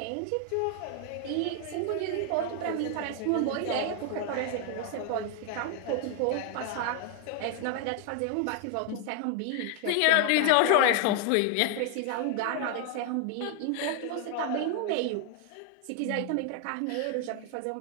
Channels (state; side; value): different; both; correlation 0.00